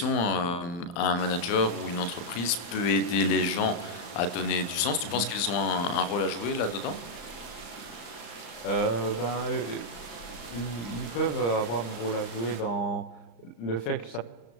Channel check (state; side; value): late; right; 35 ms